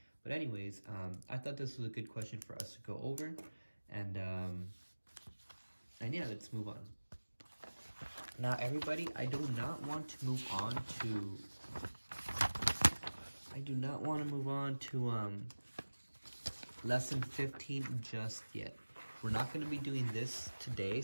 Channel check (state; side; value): inverted; both; correlation -1.00